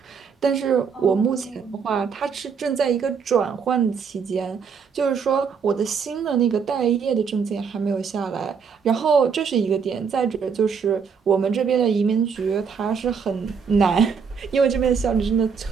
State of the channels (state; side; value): quieter; left; 6.2 dB